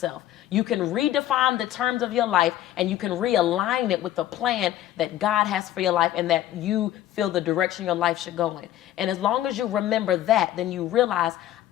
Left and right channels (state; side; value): quieter; right; 13.0 dB